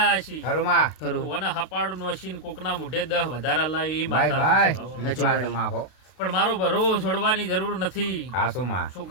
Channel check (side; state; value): right; late; 32 ms